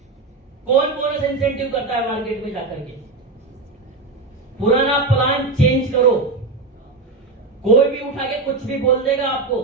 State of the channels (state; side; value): quieter; left; 3.6 dB